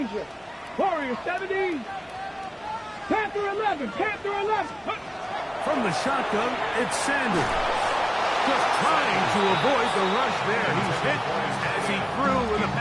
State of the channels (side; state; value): both; identical; correlation 1.00